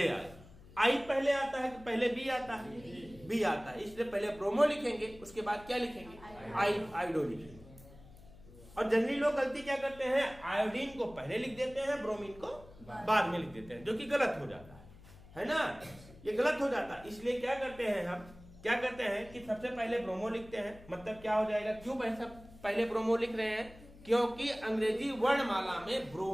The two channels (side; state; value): left; noise; hum, 21 dB below the sound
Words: आए। आई पहले आता है कि पहले बी आता है, बी आता है, इसलिए पहले ब्रोमो लिखेंगे, उसके बाद क्या लिखेंगे, आयोडो लिखेंगे। और जनरली लोग गलती क्या करते हैं, आयोडीन को पहले लिख देते हैं, ब्रोमीन को बाद में लिख देते हैं, जो कि गलत हो जाता है ना, ये गलत हो जाता है। इसलिए क्या करते हैं हम, क्या करते हैं कि सबसे पहले ब्रोमो लिखते हैं, मतलब क्या हो जाएगा, क्यों पहले ब्रोमो लिख रहे हैं, क्योंकि अंग्रेजी वर्णमाला में